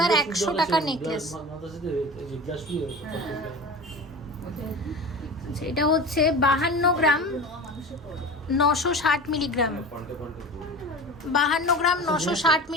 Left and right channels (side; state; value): both; normal; correlation 0.33